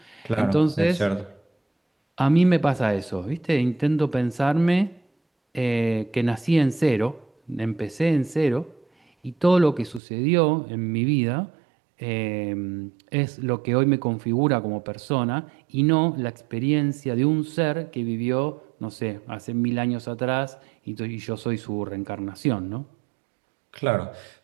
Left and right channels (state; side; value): drops out; left; at 10.0 s